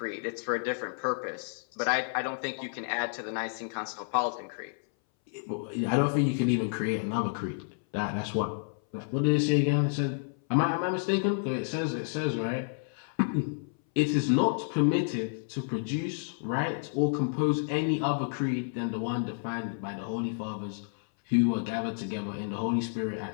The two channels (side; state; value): right; silent; 58 dB below the other